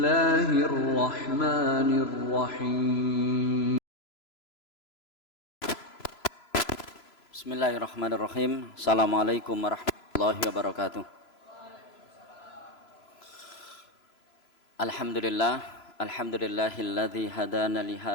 Bismillahirrahmanirrahim. Assalamualaikum warahmatullahi wabarakatuh. Alhamdulillahilladzi hadana li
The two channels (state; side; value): late; right; 3.0 ms